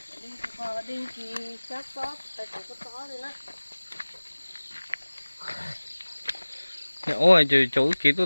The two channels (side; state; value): both; inverted; correlation -1.00